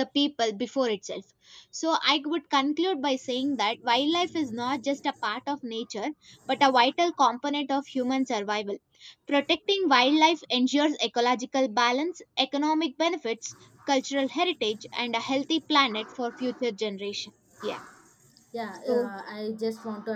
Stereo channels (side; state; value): both; identical; correlation 1.00